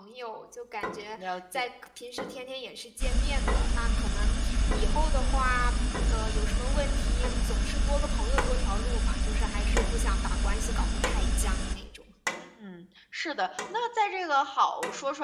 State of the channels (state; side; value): identical; both; correlation 1.00